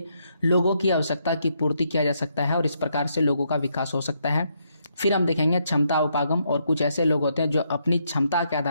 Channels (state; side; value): inverted; both; correlation -0.76